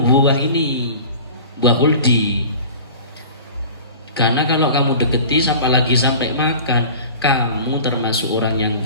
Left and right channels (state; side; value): inverted; both; correlation -0.40